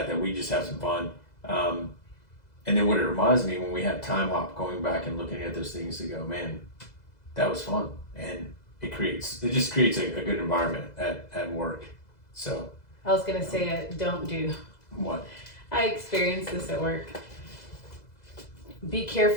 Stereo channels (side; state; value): right; late; 2.0 ms